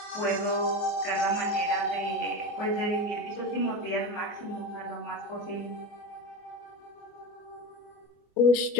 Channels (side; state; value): right; late; 24 ms